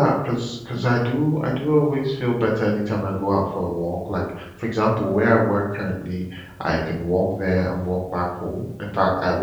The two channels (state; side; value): identical; both; correlation 1.00